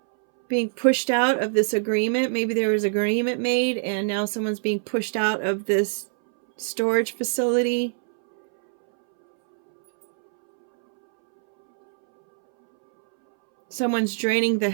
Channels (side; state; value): left; silent; 63 dB below the other